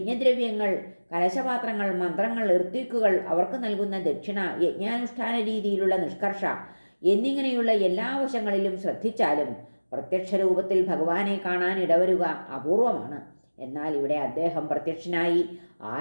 കലശപാത്രങ്ങൾ, മന്ത്രങ്ങൾ, ഋത്വിക്കുകൾ, അവർക്ക് നൽകുന്ന ദക്ഷിണ, യജ്ഞാനുഷ്ഠാന രീതിയിലുള്ള നിഷ്കർഷ എന്നിങ്ങനെയുള്ള എല്ലാ വശങ്ങളിലും ശ്രദ്ധിച്ചാലും പ്രത്യക്ഷ രൂപത്തിൽ ഭഗവാനെ കാണാൻ ഇടവരുക അപൂർവമാണ്. എന്നാൽ ഇവിടെ അദ്ദേഹം പ്രത്യക്ഷനായി.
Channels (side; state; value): both; inverted; correlation -1.00